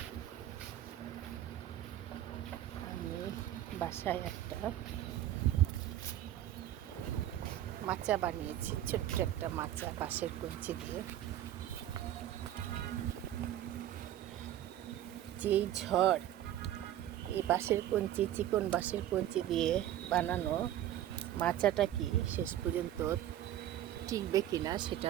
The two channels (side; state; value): left; quieter; 12.3 dB